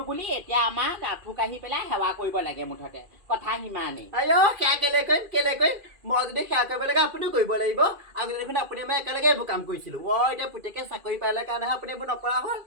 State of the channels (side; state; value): left; late; 2.4 ms